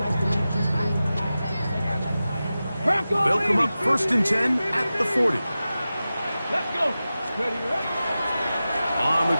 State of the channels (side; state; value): both; inverted; correlation -0.94